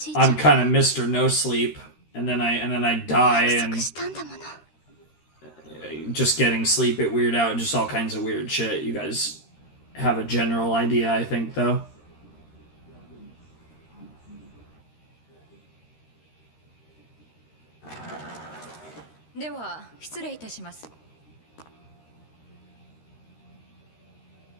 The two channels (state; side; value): late; right; 13 ms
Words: いちゃん I'm kind of Mr. No Sleep, and then I die, 約 and 束したんだもの。 just getting sleep it weird out, just all kinds of weird shit. You guys have a general idea, I think, though. は失礼いたします。